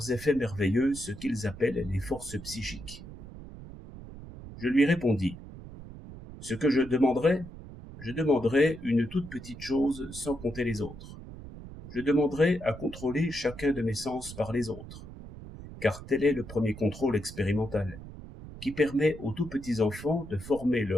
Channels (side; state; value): right; noise; rumble, 14 dB below the sound